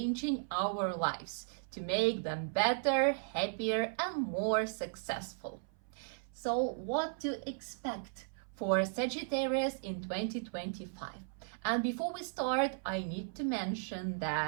our lives to make them better, happier, and more successful. So, what to expect for Sagittarius in 2025? And before we start, I need to mention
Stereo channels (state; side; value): silent; left; 54 dB below the other